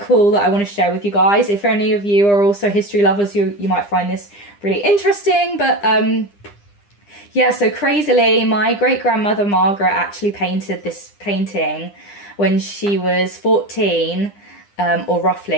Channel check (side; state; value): right; late; 9.9 ms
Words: that I want to share with you guys. If any of you are also history lovers, you might find this really interesting. But yeah, so crazily, my great-grandmother Margaret actually painted this painting when she was 14. Or